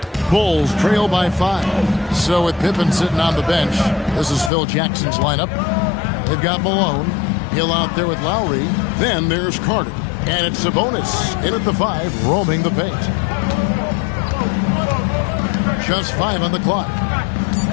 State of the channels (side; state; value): right; drops out; at 4.5 s